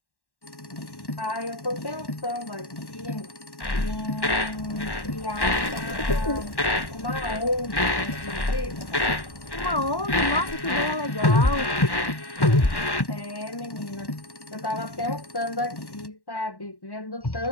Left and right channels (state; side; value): late; right; 1.1 ms